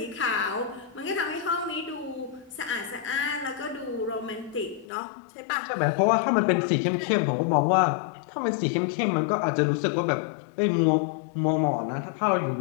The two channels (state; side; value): drops out; right; at 4.9 s